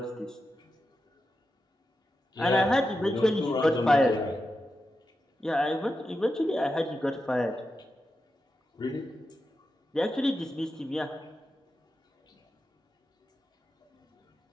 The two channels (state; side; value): normal; both; correlation 0.89